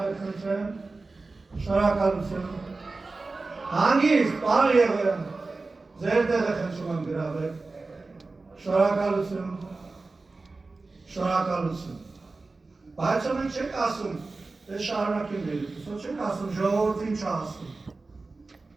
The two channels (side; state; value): left; quieter; 3.6 dB